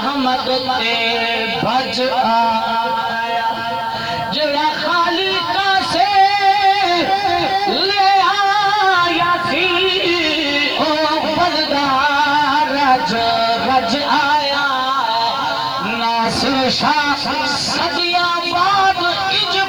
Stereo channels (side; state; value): right; noise; hiss, 30 dB below the sound